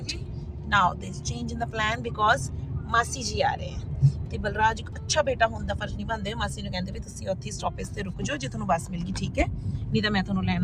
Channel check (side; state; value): both; identical; correlation 1.00